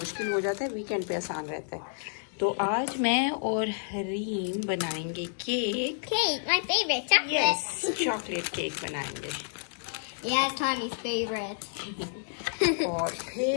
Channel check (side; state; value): right; silent; digital silence